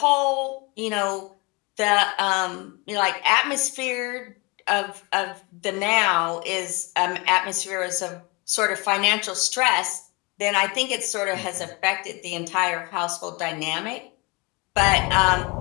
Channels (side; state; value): right; quieter; 27.1 dB